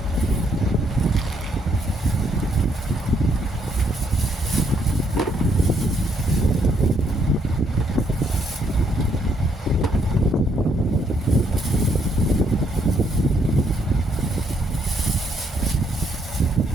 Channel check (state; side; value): normal; both; correlation 0.72